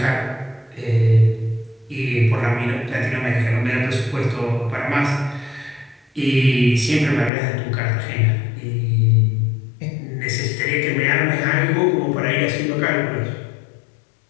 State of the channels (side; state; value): right; drops out; at 7.3 s